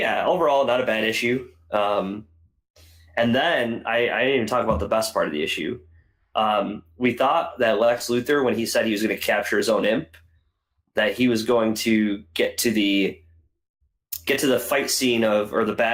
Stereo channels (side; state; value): both; identical; correlation 1.00